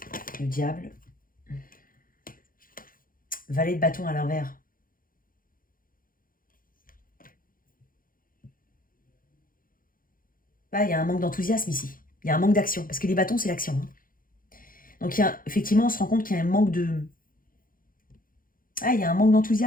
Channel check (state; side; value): late; right; 0.41 ms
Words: le diable. Valet de bâton à l'envers. Là, il y a un manque d'enthousiasme ici. Il y a un manque d'action. Parce que les bâtons, c'est l'action. Hein. Donc, effectivement, on se rend compte qu'il y a un manque de... Ah, il y a un manque